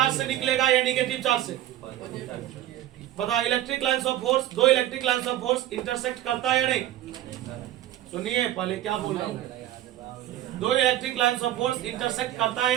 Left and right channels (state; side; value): quieter; left; 13.4 dB